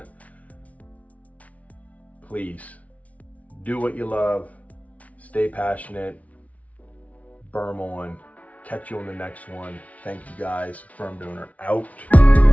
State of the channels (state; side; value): late; right; 0.068 ms